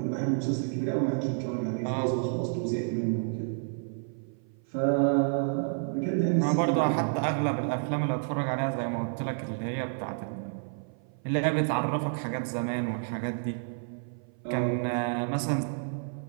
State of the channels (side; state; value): left; silent; 55 dB below the other